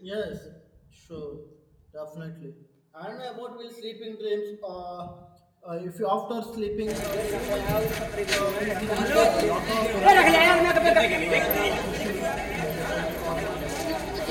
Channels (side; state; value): both; identical; correlation 1.00